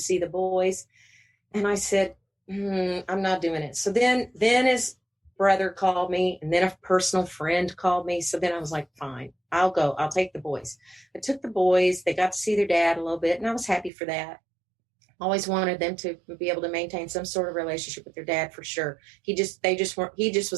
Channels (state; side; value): drops out; left; at 13.9 s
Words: the boys. And I said, I'm not doing it. So then his brother called me, and then a personal friend called me. So then I was like, fine, I'll go. I'll take the boys. I took the boys. They got to see their dad a little bit, and I was happy for that. Always wanted them to be able to maintain some sort of relationship with their dad, for sure. He just